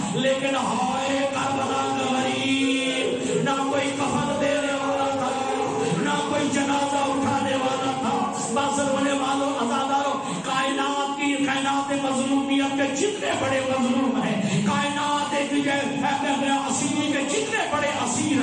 لیکن ہائے کربلا کا غریب، نہ کوئی کفن دینے والا تھا، نہ کوئی جنازہ اٹھانے والا تھا۔ بس رونے والوں عزاداروں کائنات مظلومیت کے جتنے بڑے مظلوم ہیں، کائنات اسیری کے جتنے بڑے اسیر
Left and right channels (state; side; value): identical; both; correlation 1.00